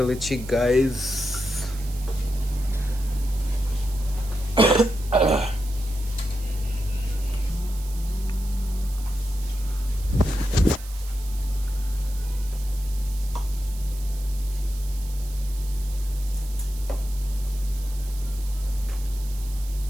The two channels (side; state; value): right; noise; hiss, 17 dB below the sound